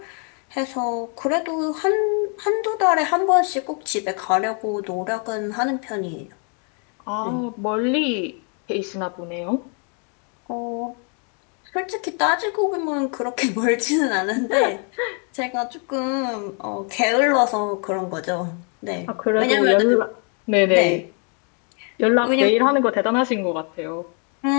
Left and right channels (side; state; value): right; quieter; 39.3 dB